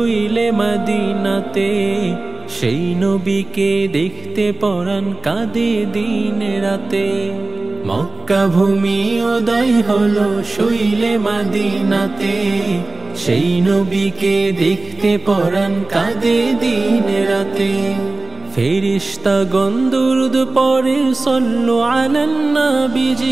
মদিনাতে, সেই নবীকে দেখতে পরাণ কাঁদে দিন রাতে। মক্কা ভূমি উদয় হলো শুইলে মদিনাতে, সেই নবীকে দেখতে পরাণ কাঁদে দিন রাতে। ফেরেশতাগণ দুরূদ পড়ে সল্লু আলান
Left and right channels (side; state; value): left; quieter; 3.4 dB